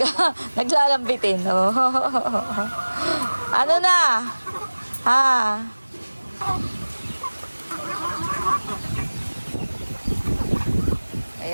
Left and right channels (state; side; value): inverted; both; correlation -1.00